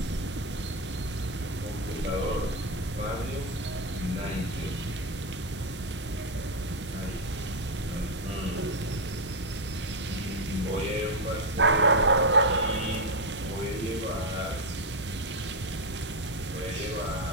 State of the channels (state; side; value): normal; both; correlation 0.05